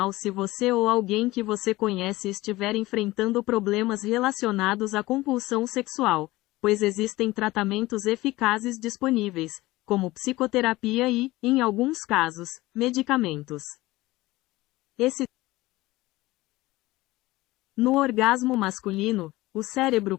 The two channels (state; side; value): quieter; right; 18.9 dB